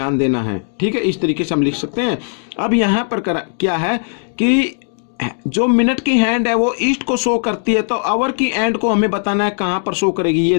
देना है। ठीक है, इस तरीके से हम लिख सकते हैं। अब यहाँ पर क्या है कि जो मिनट की हैंड है वो ईस्ट को शो करती है, तो आवर की एंड को हमें बताना है कहां पर शो करेगी। ये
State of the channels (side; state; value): right; silent; 55 dB below the other